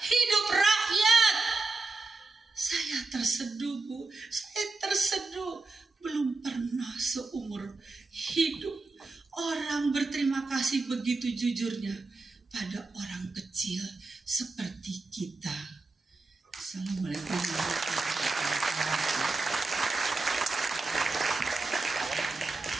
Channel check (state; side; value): quieter; left; 3.6 dB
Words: rakyat. Saya terseduh, Bu. Saya terseduh. Belum pernah seumur hidup orang berterima kasih begitu jujurnya pada orang kecil seperti kita. Assalamualaikum warahmatullahi wabarakatuh.